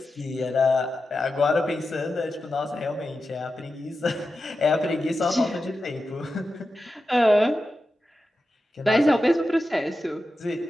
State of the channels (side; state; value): both; normal; correlation 0.91